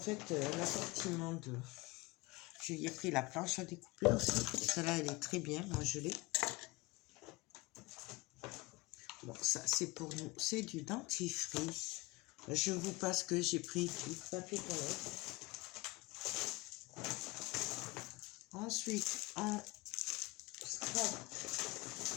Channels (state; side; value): quieter; right; 22.4 dB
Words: l'assortiment de... Je lui ai pris la planche à découper aussi. Celle-là, elle est très bien. Moi, je l'ai. Bon, ça, c'est pour nous. C'est du dentifrice. Je vous passe que j'ai pris du papier toilette. Ensuite,